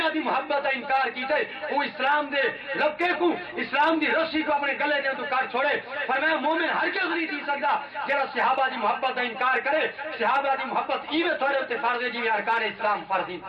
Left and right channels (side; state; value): both; identical; correlation 1.00